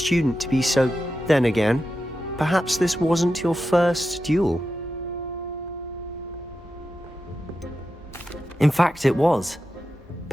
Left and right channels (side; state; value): both; normal; correlation 0.90